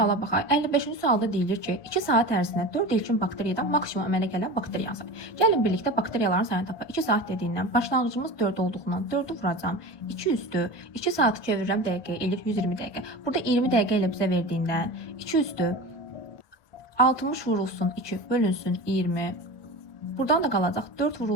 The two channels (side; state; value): right; late; 1.2 ms